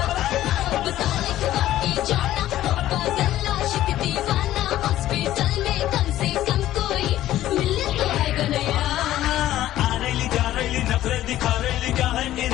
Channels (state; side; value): quieter; right; 13.7 dB